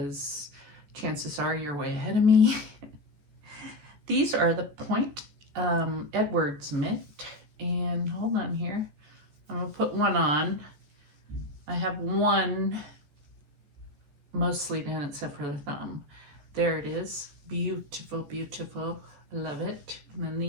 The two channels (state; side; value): late; left; 14 ms